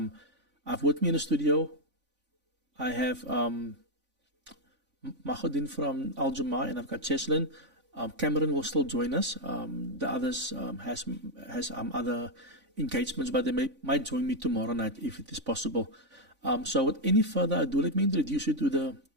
with me in the studio, I have Mahodin from Al Jama, and I've got Cheslin. Cameron will still join us. The others has other engagements, but they might join me tomorrow night if it is possible. So with any further ado, let me introduce you to the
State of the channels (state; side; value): late; left; 3.5 ms